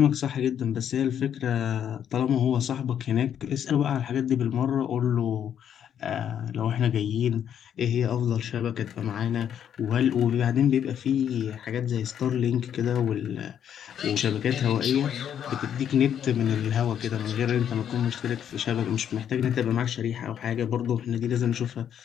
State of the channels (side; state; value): right; quieter; 9.2 dB